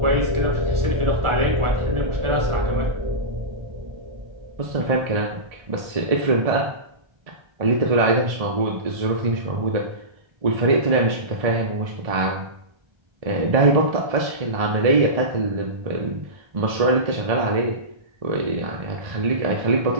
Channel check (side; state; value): left; late; 1.7 ms